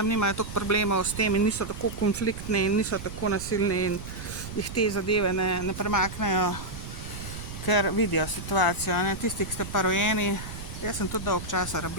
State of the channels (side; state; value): right; noise; rumble, 10 dB below the sound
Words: nimajo toliko problemov s tem in niso tako konfliktni in niso tako nasilni in jih te zadeve ne premaknejo, ker vidijo situacijo, ne. Tisti, ki ste pa rojeni, jaz sem tudi dolgo časa